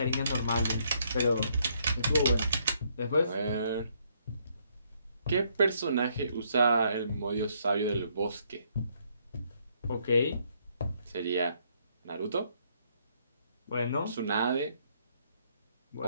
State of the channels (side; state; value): both; inverted; correlation -0.71